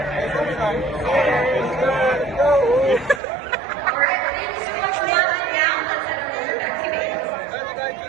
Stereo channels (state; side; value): drops out; left; at 3.2 s